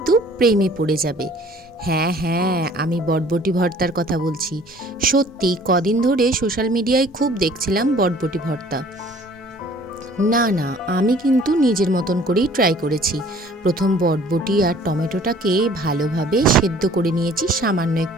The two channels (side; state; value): both; normal; correlation 0.53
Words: প্রেমে পড়ে যাবে। হ্যাঁ হ্যাঁ, আমি বটবটি ভর্তার কথা বলছি। সত্যি কদিন ধরে সোশ্যাল মিডিয়ায় খুব দেখছিলাম বটবটি ভর্তা। না না, আমি কিন্তু নিজের মতন করেই ট্রাই করেছি। প্রথম বটবটি আর টমেটোটাকে ভালোভাবে সেদ্ধ করে নিয়েছি সামান্য